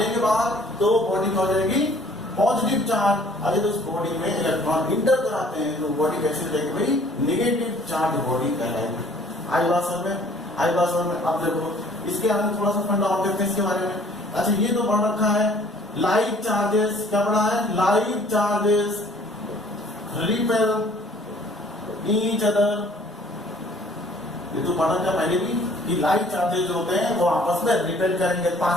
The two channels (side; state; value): both; normal; correlation 0.56